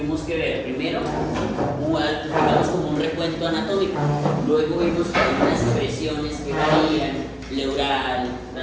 que ver primero, digamos como un recuento anatómico, luego vimos que hay unas presiones que varían, pleural,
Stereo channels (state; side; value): identical; both; correlation 1.00